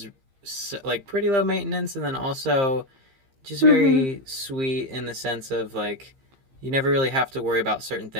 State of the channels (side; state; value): left; late; 15 ms